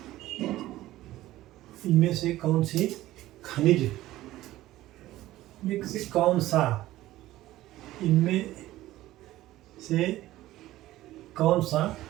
इनमें से कौन सी खनिज में से कौन सा, इनमें से कौन सा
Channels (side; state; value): left; quieter; 15.7 dB